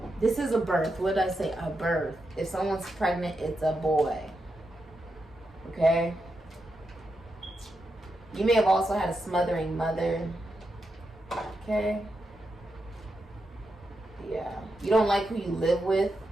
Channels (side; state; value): both; normal; correlation 0.86